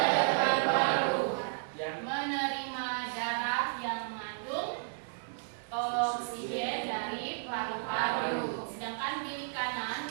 Menerima darah yang mengandung oksigen dari paru-paru. Sedangkan bilik kanan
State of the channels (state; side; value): silent; left; digital silence